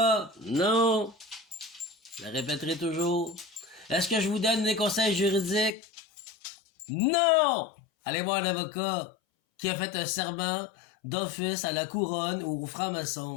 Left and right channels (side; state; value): right; drops out; at 5.7 s